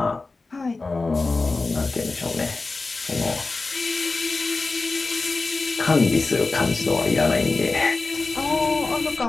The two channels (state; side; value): quieter; right; 3.7 dB